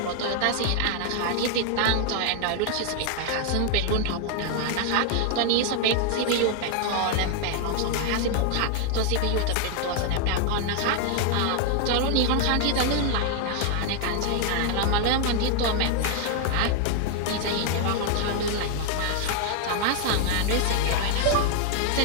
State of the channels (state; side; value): different; both; correlation 0.00